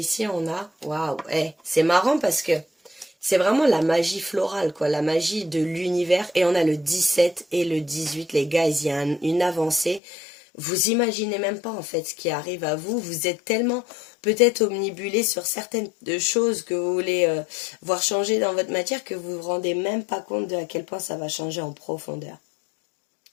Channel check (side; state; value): right; drops out; at 10.0 s